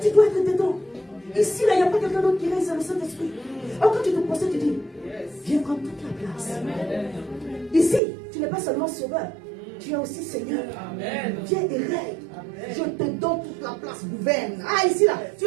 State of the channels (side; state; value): left; drops out; at 8.0 s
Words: dois être dedans. Ici, là, il n'y a pas quelqu'un d'autre qui reste dans le Saint-Esprit. Alors quand tu te procèdes, tu dis, viens prendre toute la place. Ici, tu n'es pas seulement sauveur, tu es aussi Seigneur. Amen. Viens et règne. Je te donne toute la place, gouverne. Ah, ici, là, tu